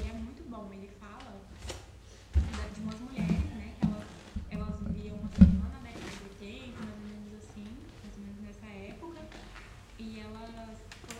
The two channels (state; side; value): identical; both; correlation 1.00